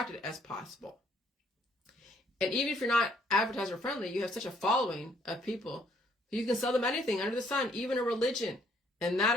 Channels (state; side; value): normal; both; correlation 0.66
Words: as possible. And even if you're not advertiser friendly, you have such a following of people who you can sell them anything under the sun, even a religion. And that